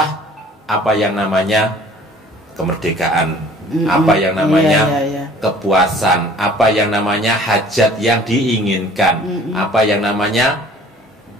apa yang namanya kemerdekaan, apa yang namanya kepuasan, apa yang namanya hajat yang diinginkan, apa yang namanya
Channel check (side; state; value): both; normal; correlation 0.51